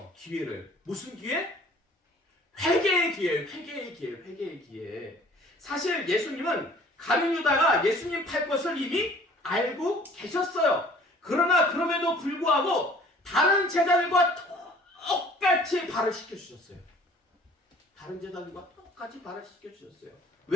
기회를. 무슨 기회? 회개의 기회, 회개의 기회, 회개의 기회. 사실 예수님은 가룟 유다가 예수님 팔 것을 이미 알고 계셨어요. 그러나 그럼에도 불구하고 다른 제자들과 똑같이 발을 시켜주셨어요. 다른 제자들과 똑같이 발을 시켜주셨어요.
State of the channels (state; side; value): normal; both; correlation 0.52